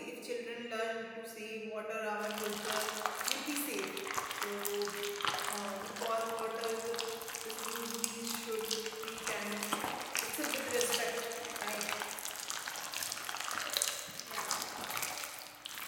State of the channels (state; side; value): identical; both; correlation 1.00